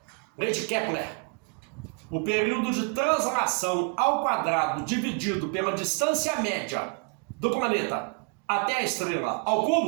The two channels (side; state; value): left; quieter; 35.8 dB